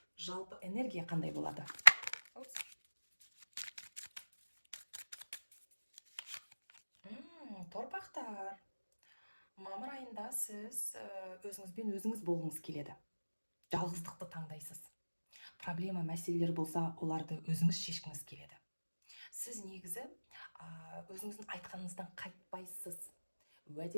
Жалпы энергия қандай болады? Торпақтар, мамыр айында сіз өзіңізбен өзіңіз болғыңыз келеді. Жалғыздықты таңдайсыз. Проблема, мәселелер болса, оларды өзіңіз шешкіңіз келеді. Сіз негізі өзіңіздің айтқаныңыздан қайтпайсыз.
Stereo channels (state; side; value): inverted; both; correlation -1.00